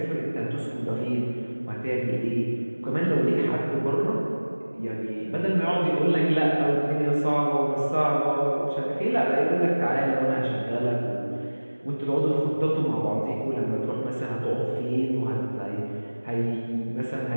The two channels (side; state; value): both; inverted; correlation -1.00